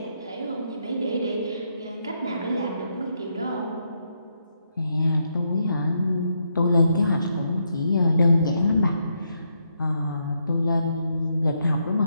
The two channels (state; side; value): inverted; both; correlation -0.79